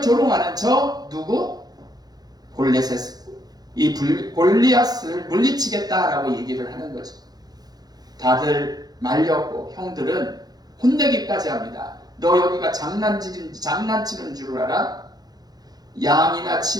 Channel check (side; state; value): left; late; 0.19 ms